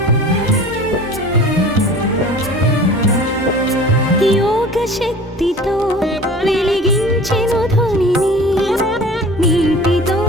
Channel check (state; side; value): normal; both; correlation 0.42